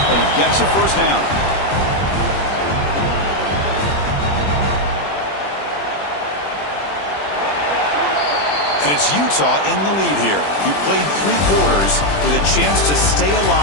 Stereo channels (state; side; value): late; right; 20 ms